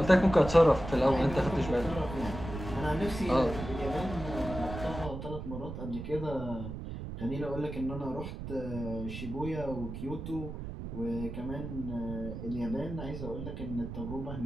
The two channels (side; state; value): right; noise; rumble, 8 dB below the sound